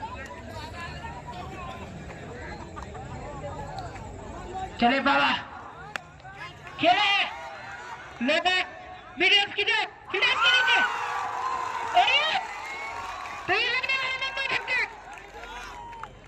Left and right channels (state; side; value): identical; both; correlation 1.00